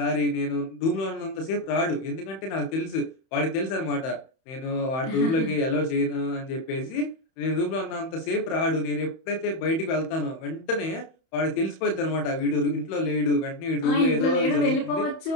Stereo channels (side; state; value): right; late; 31 ms